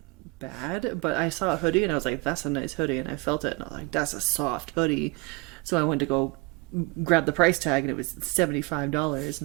bad, but I saw a hoodie and I was like, that's a nice hoodie, and I felt it and I was like, that's a soft hoodie. So I went to go grab the price tag and it was $75,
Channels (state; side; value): quieter; left; 26.5 dB